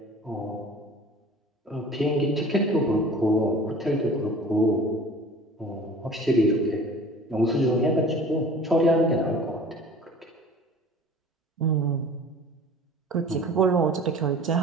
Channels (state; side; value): normal; both; correlation 0.44